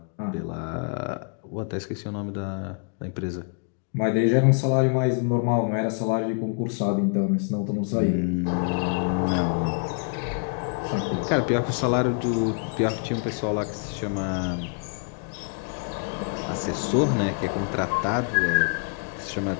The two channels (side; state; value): right; quieter; 39.5 dB